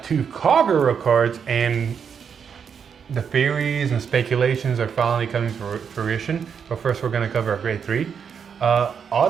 2 Kagura cards and the theories and speculations are finally coming to fruition. But first we're gonna cover a grade 3.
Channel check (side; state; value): left; quieter; 7.0 dB